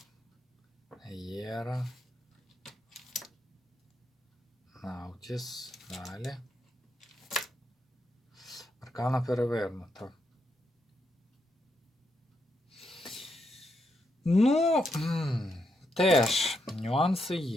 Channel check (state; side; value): normal; both; correlation 0.80